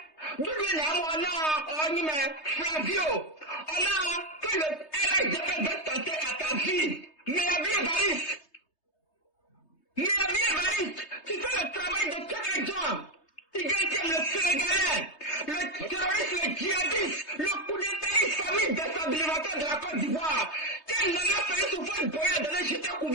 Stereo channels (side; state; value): right; late; 3.2 ms